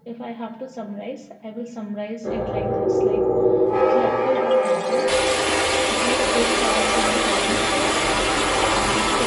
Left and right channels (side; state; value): both; identical; correlation 1.00